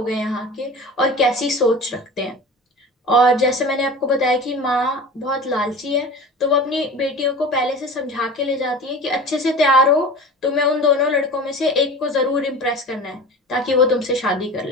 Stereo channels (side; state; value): both; normal; correlation 0.36